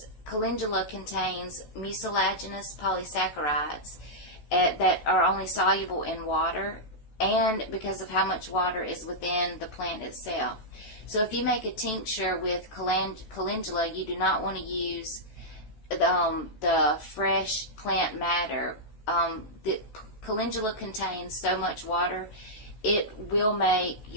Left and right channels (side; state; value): right; late; 14 ms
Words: calendula contains mucilaginous polysaccharides that are only soluble in water, and because of how much water is within the plant itself. So if you make a tincture with calendula, you do not want to use the fresh plant matter. The calendula contains so much water, it will make